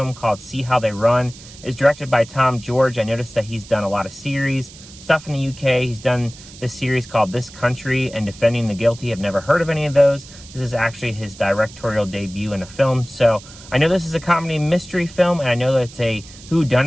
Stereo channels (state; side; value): noise; right; hiss, 19 dB below the sound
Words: called See How They Run. It's directed by Tom George. I noticed that he's done a lot of series, stuff in the UK. He's done this series called This Country and Defending the Guilty. I've never heard of any of those. This is actually his directorial debut in a film. So I know this is a comedy mystery film, and I know that it's a